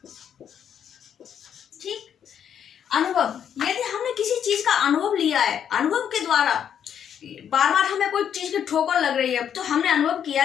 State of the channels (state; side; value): quieter; right; 8.7 dB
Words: ठीक। अनुभव, यदि हमने किसी चीज का अनुभव लिया है, अनुभव के द्वारा बार बार हमें कोई चीज की ठोकर लग रही है तो हमने अनुभव किया,